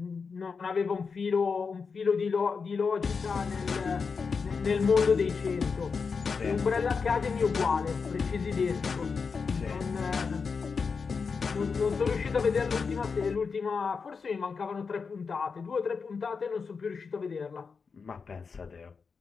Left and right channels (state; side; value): quieter; right; 5.3 dB